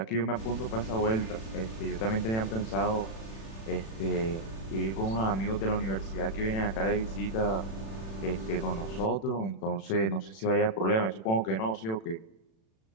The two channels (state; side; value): late; right; 36 ms